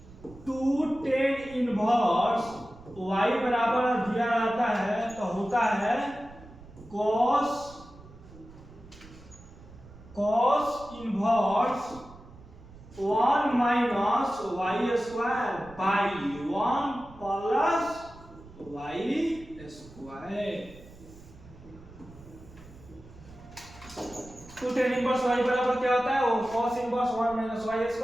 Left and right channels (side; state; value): right; noise; rumble, 20 dB below the sound